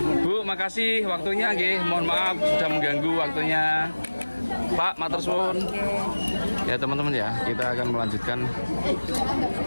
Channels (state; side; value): inverted; both; correlation -1.00